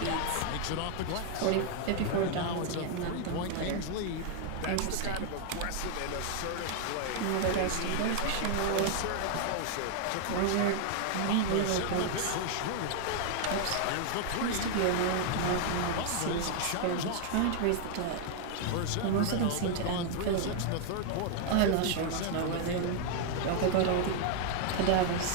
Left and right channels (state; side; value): different; both; correlation 0.00